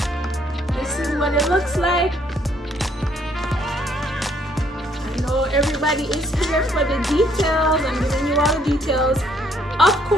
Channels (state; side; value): normal; both; correlation 0.66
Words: This is what it looks like. I know everybody is here for the details. I'm giving you all the details. Of